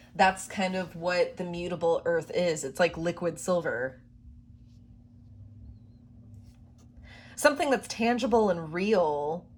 that's kind of what the mutable earth is. It's like liquid silver. Something that's tangible and real,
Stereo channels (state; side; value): identical; both; correlation 1.00